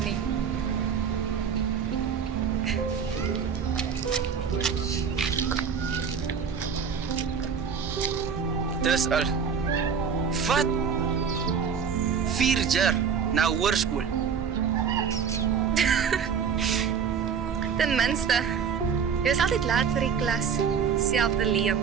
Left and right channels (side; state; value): left; quieter; 6.8 dB